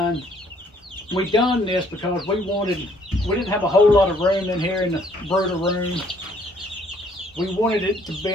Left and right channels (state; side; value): normal; both; correlation 0.64